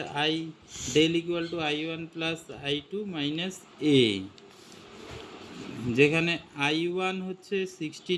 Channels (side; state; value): both; identical; correlation 1.00